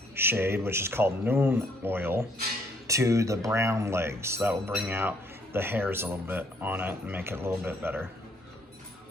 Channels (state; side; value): normal; both; correlation 0.67